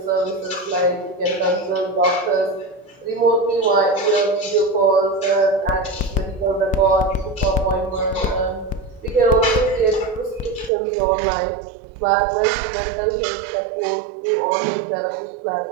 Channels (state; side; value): drops out; left; at 10.7 s